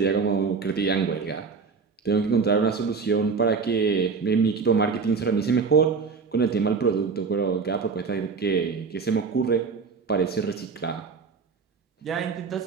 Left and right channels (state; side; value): quieter; left; 5.1 dB